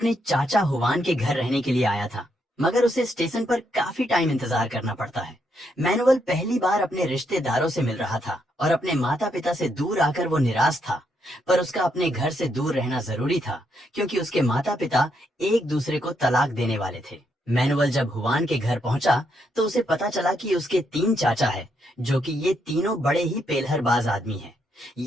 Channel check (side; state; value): both; normal; correlation 0.77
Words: चाचा हुवान के घर रहने के लिए आया था, मगर उसे स्टेशन पर काफी टाइम इंतजार करना पड़ता है। मैनुअल पहली बार अपने रिश्तेदारों से मिल रहा था और अपने माता पिता से दूर आकर वो निराश था। पर उसका अपने घर से दूर रहना जरूरी था क्योंकि उसके माता पिता एक दूसरे को तलाक देने वाले थे। मैनुअल जब हुवान के घर पहुंचा तो उसे पता चला कि उसके 3 चाचा है, जो कि ये तीनों बड़े ही पेलहरबाज आदमी हैं।